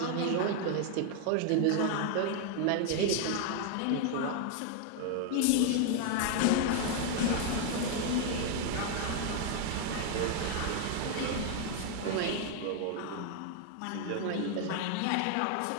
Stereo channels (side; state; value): both; different; correlation 0.00